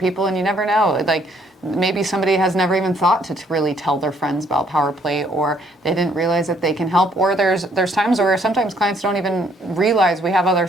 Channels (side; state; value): both; normal; correlation 0.66